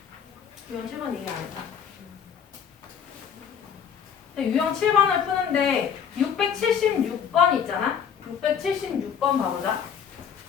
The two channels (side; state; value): right; quieter; 7.7 dB